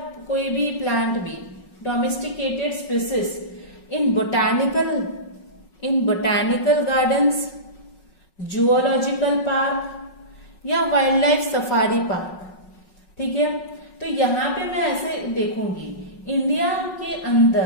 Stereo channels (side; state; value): right; late; 5.4 ms